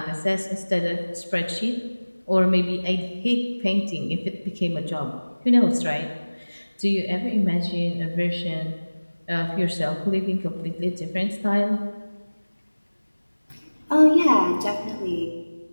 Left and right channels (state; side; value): inverted; both; correlation -1.00